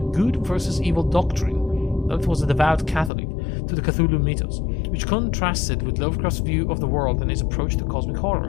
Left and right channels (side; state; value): right; drops out; at 3.1 s